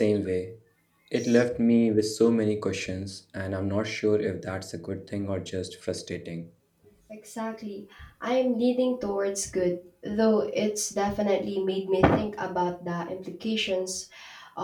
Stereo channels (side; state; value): both; identical; correlation 1.00